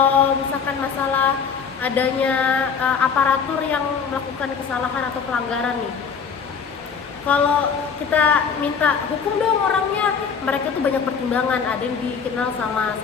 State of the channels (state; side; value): quieter; right; 6.3 dB